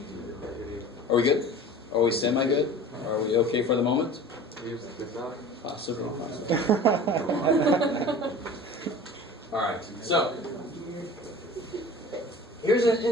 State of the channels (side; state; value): both; normal; correlation 0.41